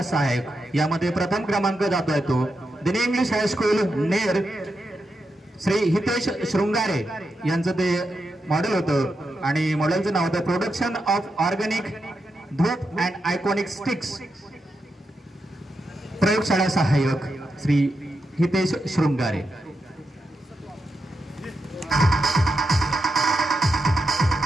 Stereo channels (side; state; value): both; normal; correlation 0.86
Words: सहाय्यक. यामध्ये प्रथम क्रमांक जातोय तो दिनी इंग्लिश हायस्कूल नेर, श्री हितेश शृंगारे यांचं ते मॉडेल होतं आणि मॉडेलचं नाव होतं production of organic dhoop and iconic sticks. प्रयोगशाळा सहाय्यक श्री हितेश शृंगारे.